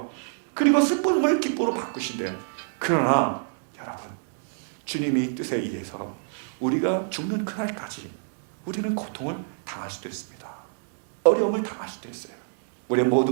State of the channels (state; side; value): silent; left; digital silence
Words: 그리고 슬픔을 기쁨으로 바꾸신대요. 그러나 여러분, 주님이 뜻에 의해서 우리가 죽는 그날까지 우리는 고통을 당할 수도 있습니다. 어려움을 당할 수도 있어요. 우리의